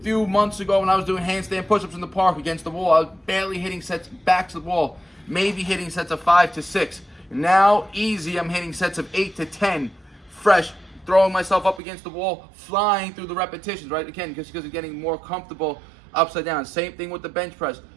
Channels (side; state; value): left; drops out; at 11.8 s